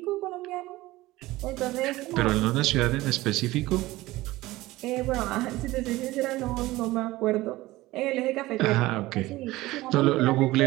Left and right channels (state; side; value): quieter; left; 18.3 dB